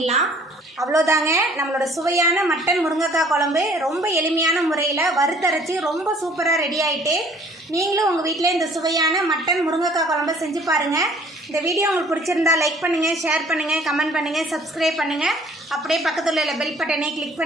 அவ்வளோதாங்க, நம்மளோட சுவையான மட்டன் முருங்கைக்காய் குழம்பு ரொம்ப எளிமையான முறையில் வறுத்தரைச்சி ரொம்ப சூப்பராக ரெடி ஆகிட்டு. நீங்களும் உங்கள் வீட்டில் இந்த சுவையான மட்டன் முருங்கைக்காய் குழம்பை செஞ்சு பாருங்கள். இந்த வீடியோ உங்களுக்கு பிடிச்சிருந்தா லைக் பண்ணுங்கள், ஷேர் பண்ணுங்கள், கமெண்ட் பண்ணுங்கள், சப்ஸ்கிரைப் பண்ணுங்கள். அப்படியே பக்கத்தில் உள்ள பெல் பட்டனை கிளிக்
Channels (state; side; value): normal; both; correlation 0.55